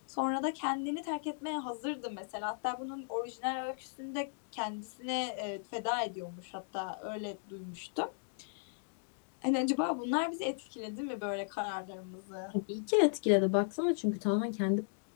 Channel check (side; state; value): right; silent; digital silence